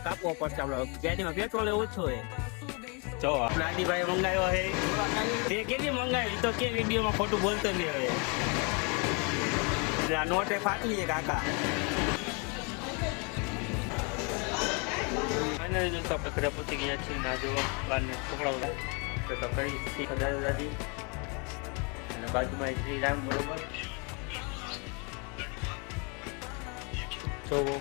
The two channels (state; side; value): quieter; right; 33.7 dB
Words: કાપવો પડશે. આપણે ગાડીમાં પેટ્રોલ ઓછું હોય. જો આપણે આદિભાઈ મંગાવ્યો છે. તે કેટલી મંગાવી તો કે વિડીયોમાં ખોટું બોલતો નહીં હવે. આ નોટે ફાટલી છે કાકા. ફાઇનલી દોસ્તો આપણે ઘરે પહોંચી ગયા છીએ. ના જો બહારને છોકરાઓ તો કરી દાદા દાદી અને બાજુમાં શ્રી રામ બરોબર જોવો